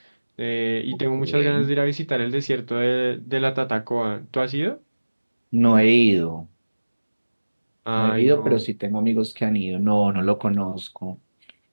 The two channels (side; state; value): both; inverted; correlation -1.00